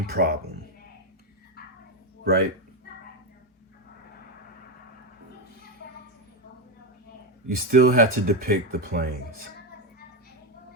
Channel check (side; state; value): both; normal; correlation 0.08